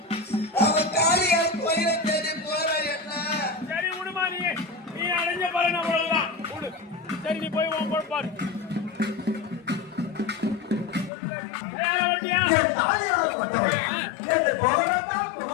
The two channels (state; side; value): drops out; right; at 11.1 s